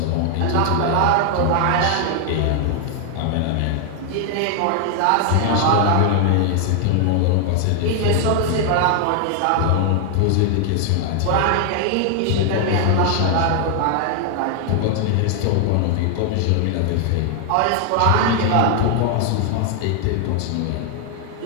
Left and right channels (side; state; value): both; different; correlation 0.00